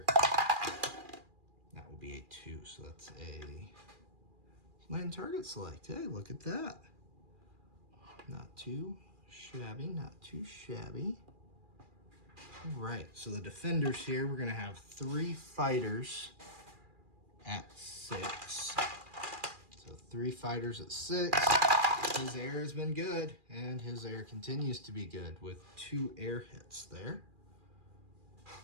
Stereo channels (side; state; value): left; late; 2.4 ms